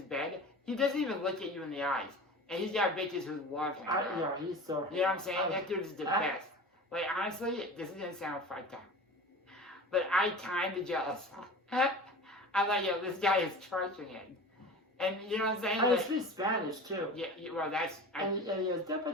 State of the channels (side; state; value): both; normal; correlation 0.35